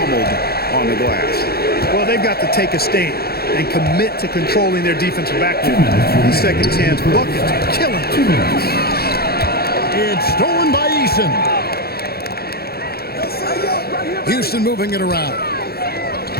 on the glass. Well, they've got to take a stand and commit to controlling their defensive backcourt. These second chance buckets are killing them. It's stolen by Eason. Houston moving it around.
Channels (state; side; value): late; right; 0.46 ms